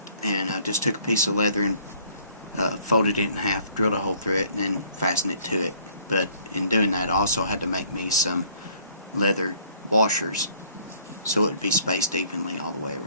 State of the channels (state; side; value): inverted; both; correlation -0.59